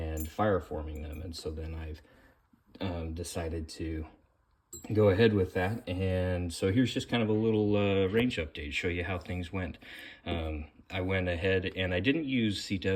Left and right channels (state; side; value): identical; both; correlation 1.00